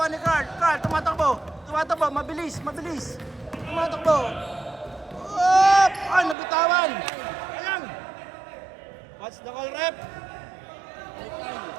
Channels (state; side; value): drops out; left; at 6.4 s